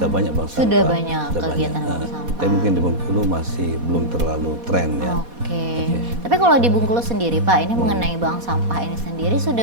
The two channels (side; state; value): left; late; 4.2 ms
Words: banyak bank sampah. Sudah banyak kegiatan bank sampah. Tapi mungkin di Bengkulu masih belum terlalu tren ya. Oke. Tapi kalau di Bengkulu sendiri Pak, ini mengenai bank sampah ini sendiri